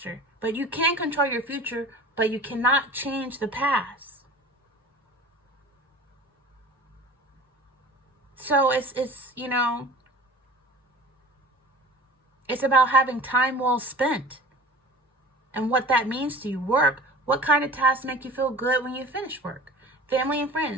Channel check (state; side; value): normal; both; correlation 0.39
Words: But you can control your future, but you cannot change the past. So it's about having time well spent. And what that means to you. Work. What kind of tasks make you feel good when you finish work? Family and